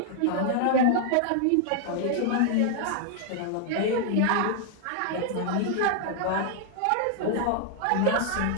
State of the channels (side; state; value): both; different; correlation 0.00